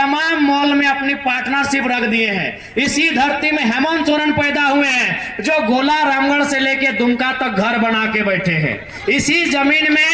मॉल में अपनी पार्टनरशिप रख दिए हैं। इसी धरती में हेमंत सोरेन पैदा हुए हैं जो गोला रामगढ़ से लेकर दुमका तक घर बना के बैठे हैं। इसी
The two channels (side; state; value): both; identical; correlation 1.00